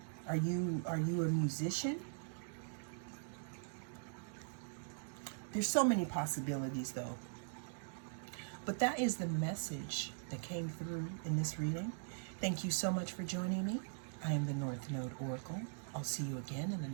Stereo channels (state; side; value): silent; left; digital silence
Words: Are you a musician? There's so many possibilities though. But that is the message that came through in this reading. Thank you so much for joining me. I am the North Node Oracle. I'll see you again in the